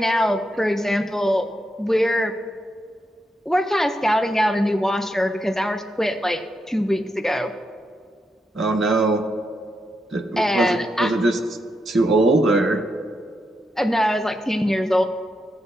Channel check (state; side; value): normal; both; correlation 0.83